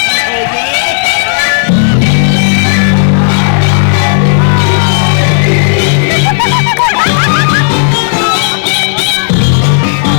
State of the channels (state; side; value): silent; right; digital silence